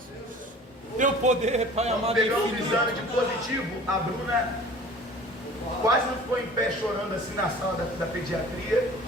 Teu poder, Pai amado. Pegamos um exame de positivo. A Bruna quase não ficou em pé chorando assim na sala da pediatria.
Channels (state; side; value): normal; both; correlation 0.45